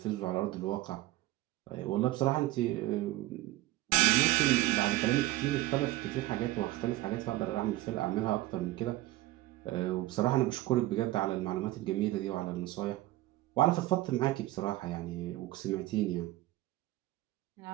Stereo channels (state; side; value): quieter; left; 17.3 dB